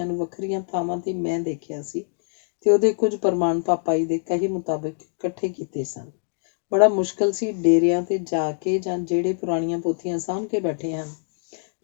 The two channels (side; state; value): right; silent; digital silence